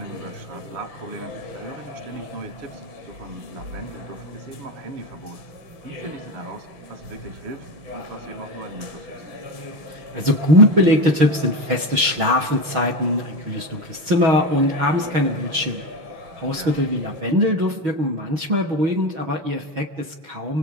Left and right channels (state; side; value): late; left; 6.3 ms